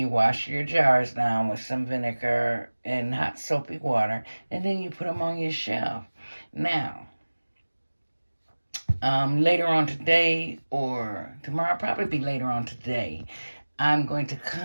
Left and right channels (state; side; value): inverted; both; correlation -1.00